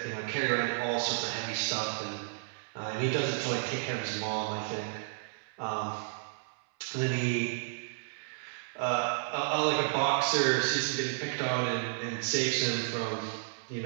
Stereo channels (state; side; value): silent; left; 56 dB below the other